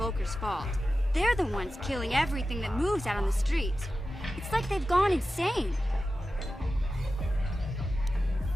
fault. They're the ones killing everything that moves out on the streets. It's like they've gone insane.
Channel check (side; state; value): both; normal; correlation 0.93